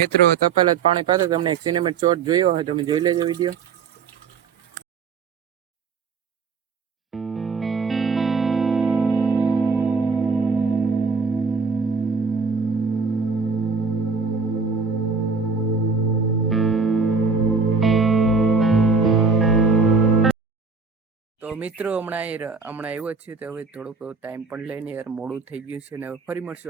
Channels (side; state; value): left; quieter; 4.9 dB